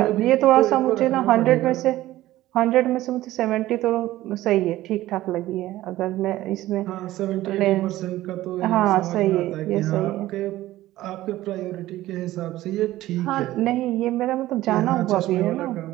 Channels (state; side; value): quieter; left; 15.7 dB